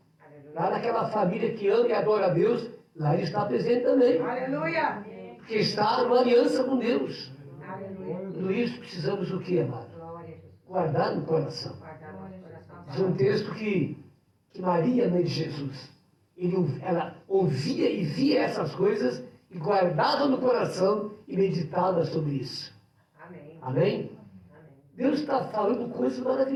Lá naquela família que ama e adora a Deus, lá ele está presente também. Aleluia. Porque está numa aliança com Deus. Aleluia. Tudo isso precisamos o quê, amado? Glória a Jesus. Guardar no coração. Guardar nosso coração. Diz um texto que Maria, mãe de Jesus, ela ouvia e via essas coisas e guardava no coração e meditava sobre isso. Amém. Amém? Amém. Deus está falando coisas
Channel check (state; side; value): identical; both; correlation 1.00